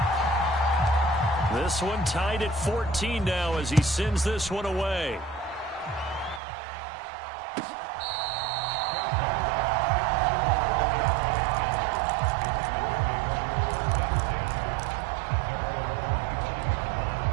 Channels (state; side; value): drops out; left; at 6.4 s